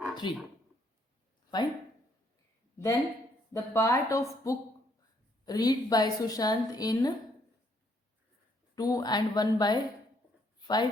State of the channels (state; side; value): normal; both; correlation 0.69